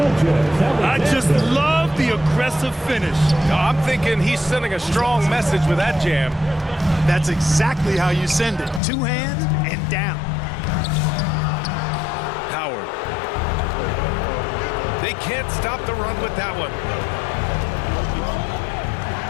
I just love the aggressive finish. I'm thinking he's sending a strong message with that jam. That's exactly how you send it. 2 hands and down. Howard. They can't stop the run with that one.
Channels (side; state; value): right; drops out; at 8.8 s